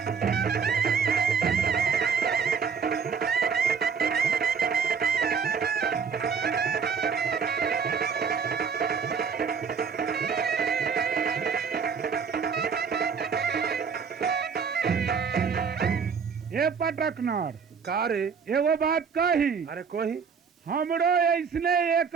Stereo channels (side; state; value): left; quieter; 6.1 dB